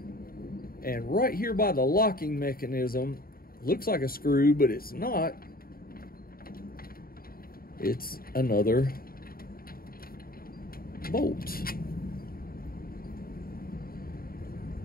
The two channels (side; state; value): right; late; 0.43 ms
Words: And right here by the locking mechanism, looks like a screw, but it's not. It's another bolt.